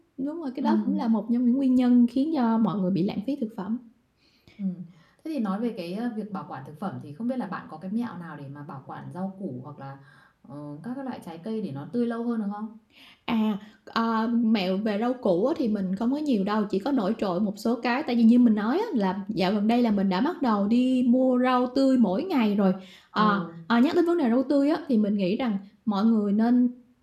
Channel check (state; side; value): identical; both; correlation 1.00